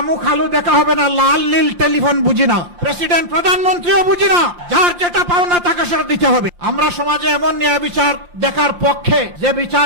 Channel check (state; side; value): late; left; 5.7 ms